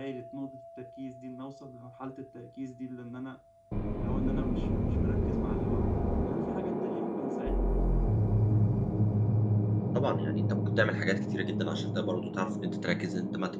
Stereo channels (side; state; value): both; identical; correlation 1.00